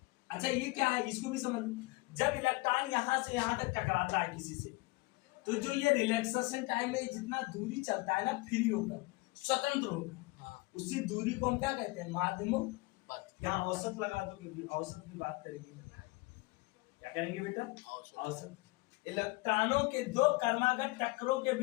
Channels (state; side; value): quieter; right; 23.9 dB